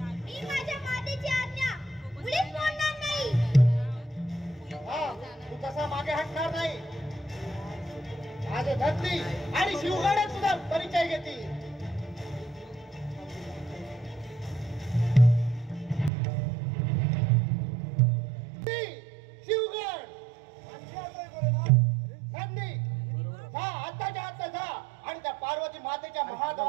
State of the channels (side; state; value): left; drops out; at 16.1 s